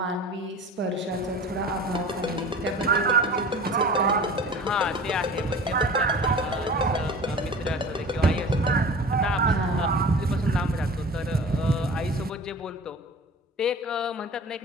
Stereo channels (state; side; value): normal; both; correlation 0.39